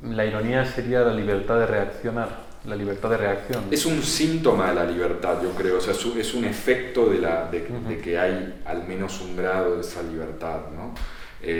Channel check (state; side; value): identical; both; correlation 1.00